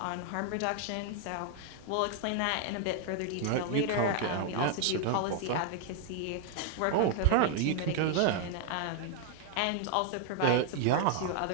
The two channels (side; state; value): both; different; correlation 0.00